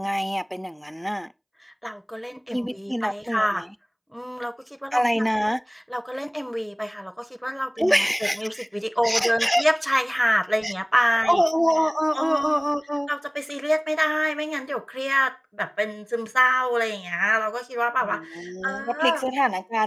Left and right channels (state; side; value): identical; both; correlation 1.00